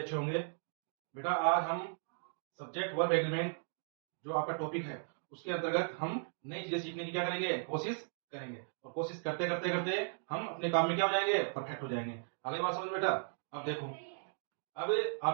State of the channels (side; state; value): left; silent; digital silence